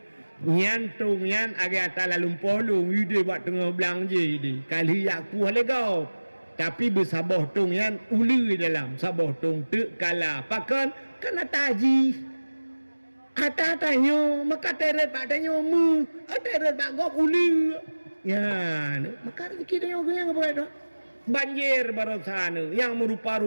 Nyan tung nyan agak atala lumpolung ide bak tengah belang je di. Kali aku le kau. Tapi bersabah tong yang uli dalam sabah tong tek kala pakan kena taji ata tanyo maka teret pak tanyo mu teret pak gop uli ya maka rezeki tanyo yang apa itu banjir barosana yang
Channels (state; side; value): inverted; both; correlation -1.00